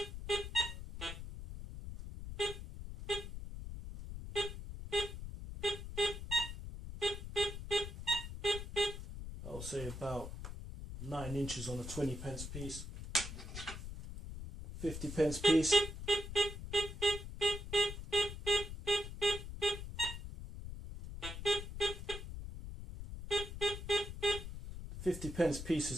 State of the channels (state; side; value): noise; left; rumble, 8 dB below the sound